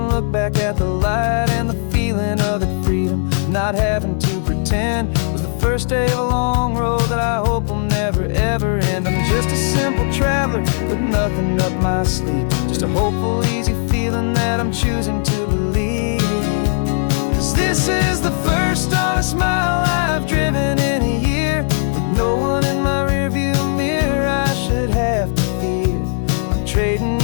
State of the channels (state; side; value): silent; right; 68 dB below the other